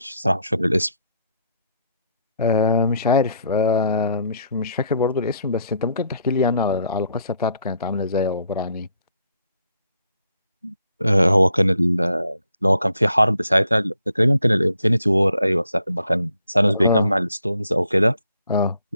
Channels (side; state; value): both; inverted; correlation -0.71